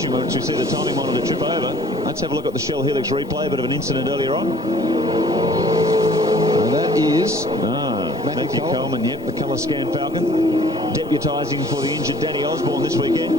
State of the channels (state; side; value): normal; both; correlation 0.54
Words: once we see the timing monitor trip over. Let's have a look at the Shell Helix replay, a bit of an incident earlier on. And that is Matthew Coleman, yep, the colour scan Falcon, deputising for the injured Danny Osborne this weekend.